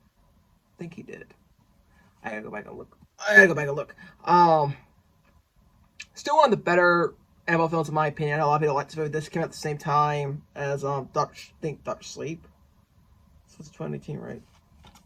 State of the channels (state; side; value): identical; both; correlation 1.00